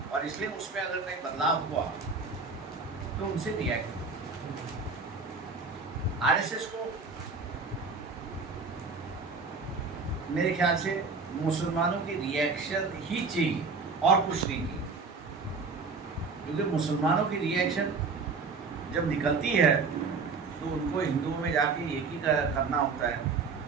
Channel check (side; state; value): left; quieter; 4.5 dB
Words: और इसलिए उसमें अगर कहीं बदलाव हुआ तो उनसे रिएक्ट। आरएसएस को मेरे ख्याल से मुसलमानों की रिएक्शन ही चाहिए और कुछ नहीं चाहिए, क्योंकि मुसलमानों की रिएक्शन जब निकलती है तो उनको हिंदुओं में जाके एक ही करना होता है,